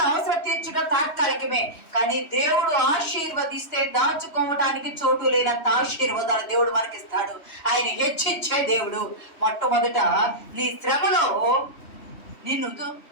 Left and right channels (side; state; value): right; late; 3.1 ms